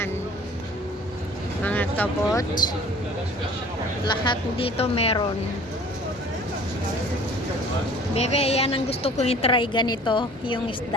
mga kabot, lahat dito meron. Bebe, yan ang gusto kong i-try, ganito yung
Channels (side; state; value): both; normal; correlation 0.48